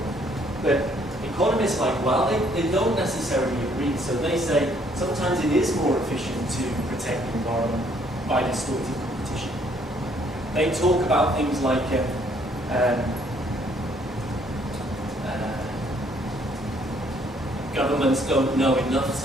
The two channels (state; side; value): normal; both; correlation 0.65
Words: But economists are like, well, they don't necessarily agree. So they say sometimes it is more efficient to protect the environment by distorting competition. They talk about things like governments don't know enough